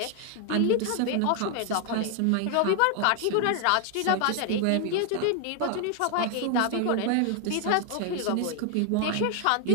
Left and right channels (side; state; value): both; different; correlation 0.01